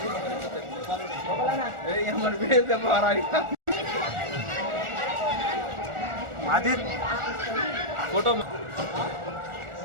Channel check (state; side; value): late; left; 1.4 ms